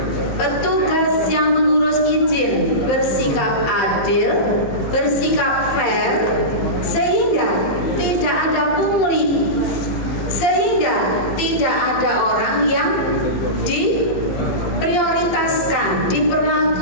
petugas yang mengurus izin bersikap adil, bersikap fair, sehingga tidak ada pungli, sehingga tidak ada orang yang diprioritaskan,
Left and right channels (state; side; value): late; right; 15 ms